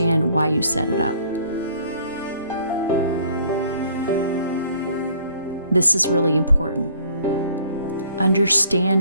why you set it up. This is really important.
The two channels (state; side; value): inverted; both; correlation -0.58